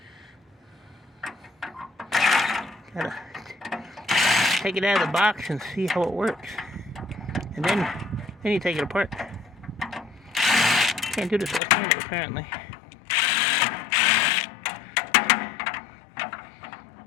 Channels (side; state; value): right; drops out; at 11.6 s